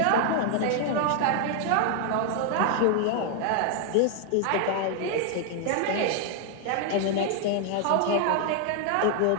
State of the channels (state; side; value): different; both; correlation 0.00